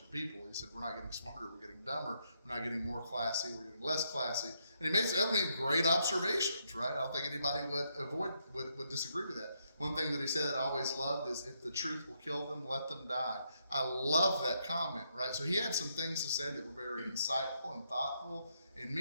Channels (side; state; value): both; inverted; correlation -0.78